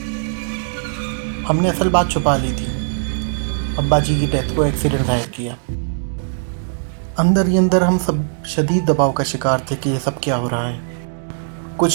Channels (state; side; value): silent; left; digital silence